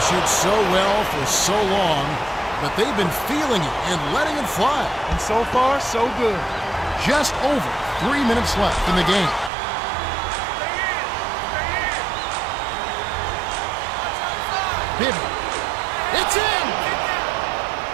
shoot so well for so long, but they've been feeling it and letting it fly. And so far, so good. Just over 3 minutes left in the game. Bibby. It's in!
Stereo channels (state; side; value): drops out; left; at 9.5 s